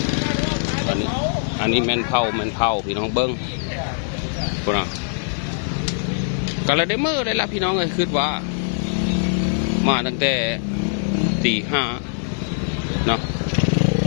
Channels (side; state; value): right; silent; digital silence